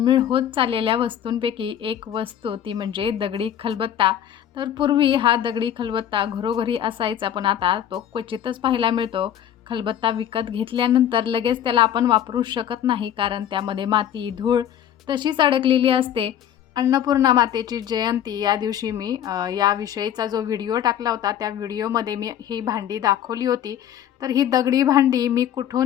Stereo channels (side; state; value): right; quieter; 10.3 dB